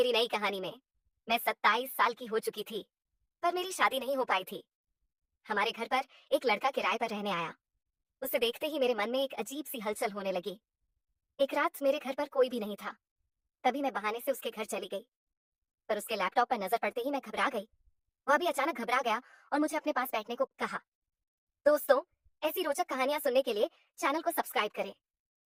नई कहानी में। मैं 27 साल की हो चुकी थी, पर मेरी शादी नहीं हो पाई थी। हमारे घर पर एक लड़का किराए पर रहने आया। उसे देखते ही मेरे मन में एक अजीब सी हलचल होने लगी। एक रात मेरे घर पर कोई भी नहीं था, तभी मैं बहाने से उसके घर चली गई, पर उसके लैपटॉप पर नजर पड़ते ही मैं घबरा गई। वह भी अचानक घबरा गया और मुझे अपने पास बैठने को कहा। दोस्तों, ऐसी रोचक कहानियां सुनने के लिए चैनल को सब्सक्राइब करें।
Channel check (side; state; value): both; identical; correlation 1.00